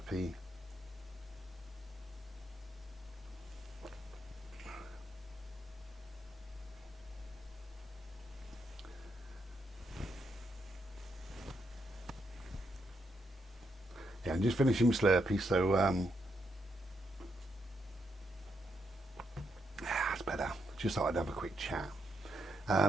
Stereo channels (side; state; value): both; normal; correlation 0.79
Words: Yeah, I'm just finishing my Slurpee, so that's better. Just thought I'd have a quick chat.